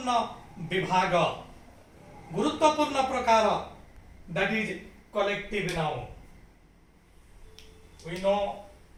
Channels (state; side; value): identical; both; correlation 1.00